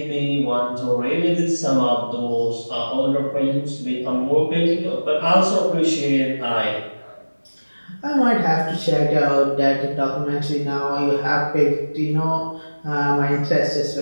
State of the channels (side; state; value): both; inverted; correlation -1.00